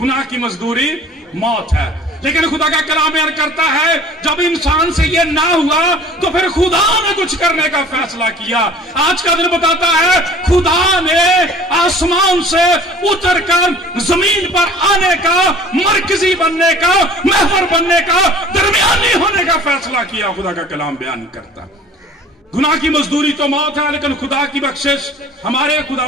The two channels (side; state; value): both; normal; correlation 0.47